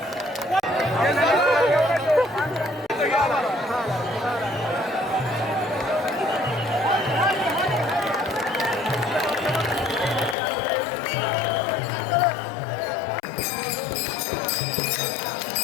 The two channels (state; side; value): drops out; right; at 10.4 s